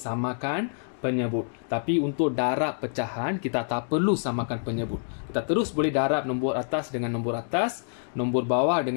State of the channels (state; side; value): silent; right; digital silence